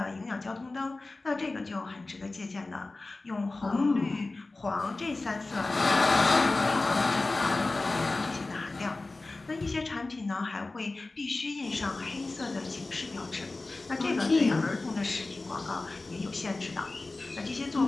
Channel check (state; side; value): quieter; right; 3.3 dB